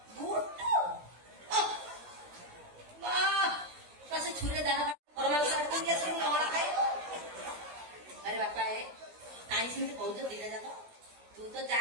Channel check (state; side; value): late; left; 17 ms